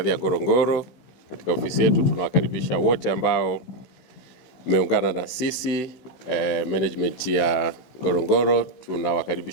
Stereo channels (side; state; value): right; late; 16 ms